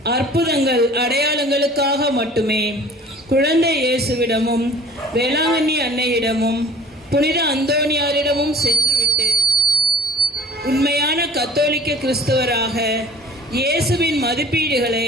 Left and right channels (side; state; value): both; normal; correlation 0.46